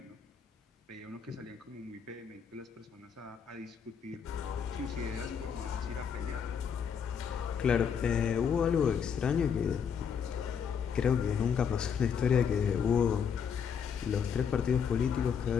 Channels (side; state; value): right; quieter; 7.1 dB